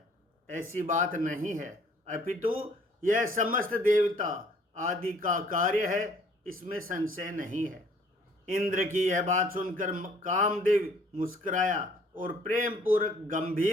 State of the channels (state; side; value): normal; both; correlation 0.58